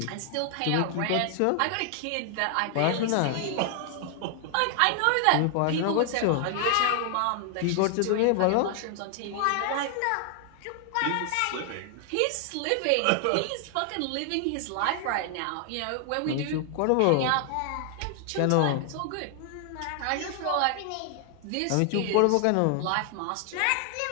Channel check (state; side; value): different; both; correlation 0.00